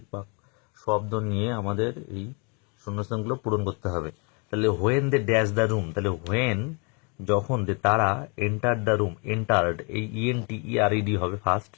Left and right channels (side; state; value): right; quieter; 34.1 dB